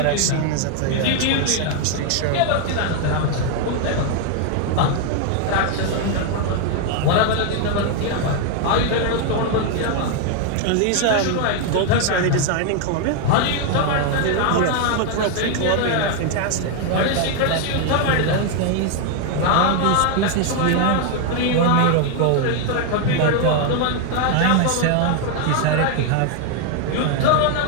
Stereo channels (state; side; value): different; both; correlation 0.01